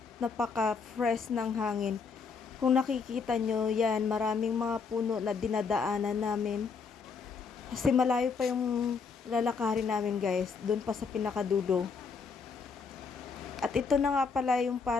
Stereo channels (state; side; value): quieter; right; 5.3 dB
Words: napaka-fresh ng hangin. Kung nakikita nyo yan, maraming mga puno na dinadaanan namin. Kasi malayo pa yung lalakarin namin guys, doon pa sa pinakadulo. At ito na nga pala yung